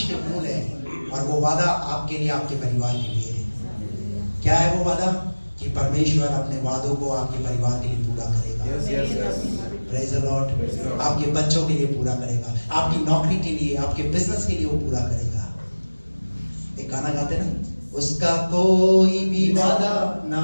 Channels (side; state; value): both; inverted; correlation -1.00